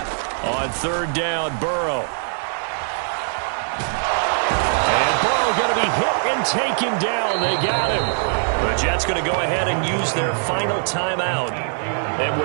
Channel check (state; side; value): silent; left; 65 dB below the other